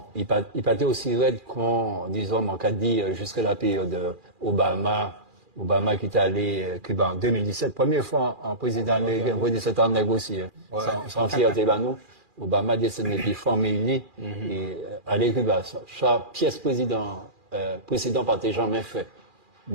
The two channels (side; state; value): left; late; 2.4 ms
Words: il partait aussi raide qu'on, disons, on a dit, jusqu'à la période Obama qui est allé Cuba en 2017, première fois en président américain, pour 17 ans négocier, sans fierté, nous. Obama descend depuis formé et aller Cuba. Chaque pièce précédent partait jamais fait.